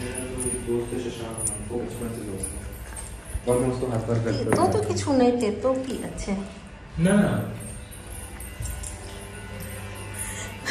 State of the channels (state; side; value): identical; both; correlation 1.00